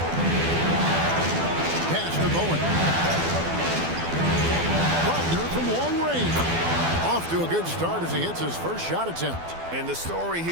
Pass to Bowen. Wagner from long range. Off to a good start as he hits his first shot attempt. And the story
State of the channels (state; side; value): late; left; 12 ms